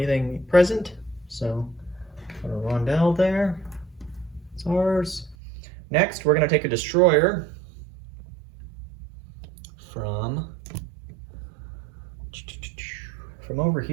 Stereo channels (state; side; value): drops out; left; at 5.4 s